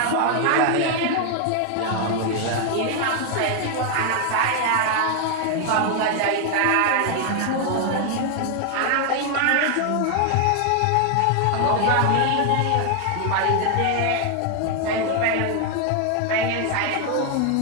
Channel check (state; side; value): different; both; correlation 0.00